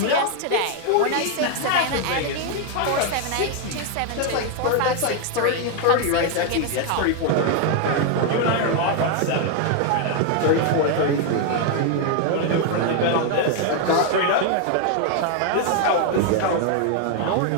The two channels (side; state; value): both; different; correlation 0.00